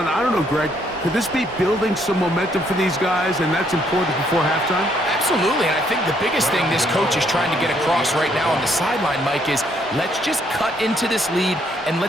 I don't know, Greg. Could this be building some momentum for these guys, and that's important before halftime? Absolutely, and I think the biggest thing this coach is trying to get across right now on the sideline, Mike, is let's just cut into this lead and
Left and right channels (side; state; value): both; normal; correlation 0.70